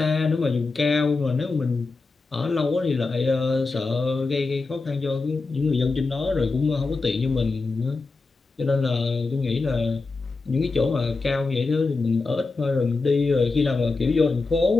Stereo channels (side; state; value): right; quieter; 3.8 dB